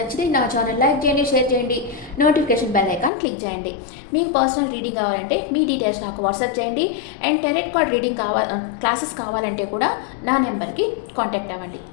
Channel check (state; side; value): drops out; right; at 3.1 s